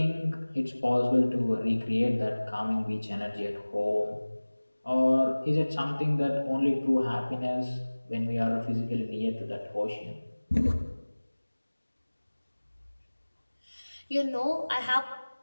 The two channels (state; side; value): inverted; both; correlation -1.00